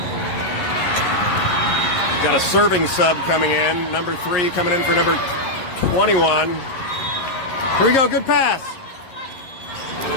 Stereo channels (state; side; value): late; right; 11 ms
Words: Got a serving sub coming in. Number 3 coming in for number 21. Here we go. Good pass.